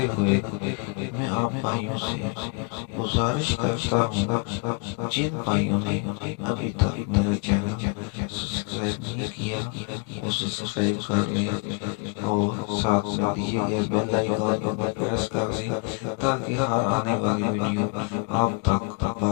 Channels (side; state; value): right; quieter; 32.4 dB